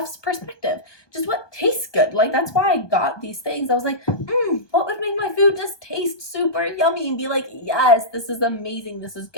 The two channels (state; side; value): late; right; 1.2 ms